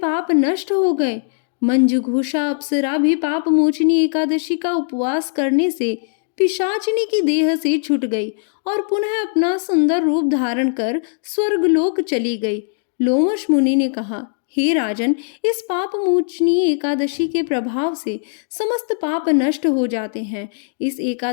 नष्ट हो गए। मंजू घोषा अप्सरा भी पाप मोचनी एकादशी का उपवास करने से पिशाचिनी की देह से छूट गई और पुनः अपना सुंदर रूप धारण कर स्वर्गलोक चली गई। लोमश मुनि ने कहा, हे राजन, इस पाप मोचनी एकादशी के प्रभाव से समस्त पाप नष्ट हो जाते हैं। इस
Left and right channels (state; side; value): silent; right; digital silence